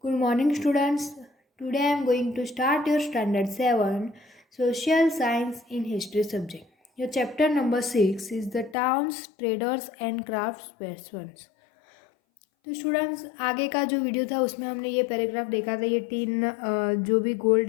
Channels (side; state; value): right; drops out; at 8.8 s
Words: Good morning, students. Today I am going to start your Standard 7 Social Science in History subject. Your chapter number 6 is the Towns, Traders and Craftspersons. तो students आगे का जो video था उसमें हमने ये paragraph देखा था, ये तीन जो भी